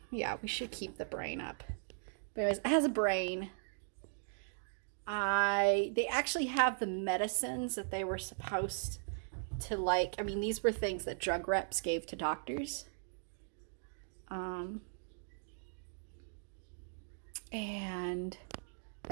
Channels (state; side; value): silent; left; digital silence